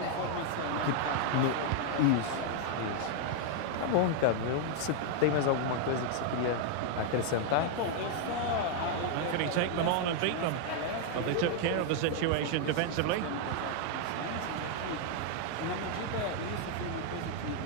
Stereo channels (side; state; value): both; different; correlation 0.00